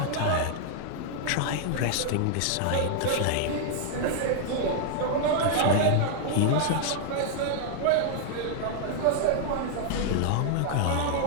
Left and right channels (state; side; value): different; both; correlation 0.00